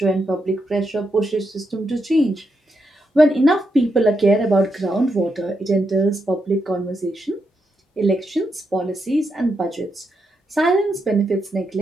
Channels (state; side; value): normal; both; correlation 0.83